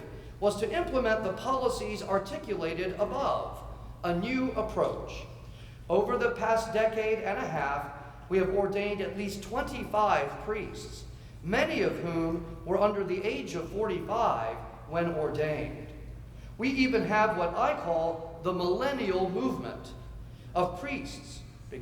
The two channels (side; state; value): both; identical; correlation 1.00